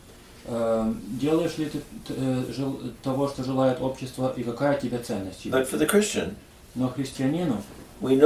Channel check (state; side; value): identical; both; correlation 1.00